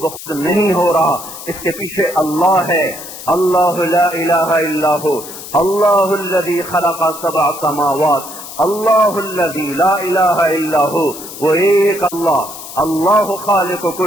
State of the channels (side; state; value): left; noise; hiss, 13 dB below the sound